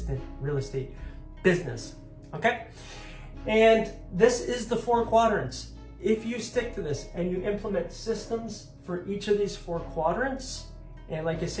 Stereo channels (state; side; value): identical; both; correlation 1.00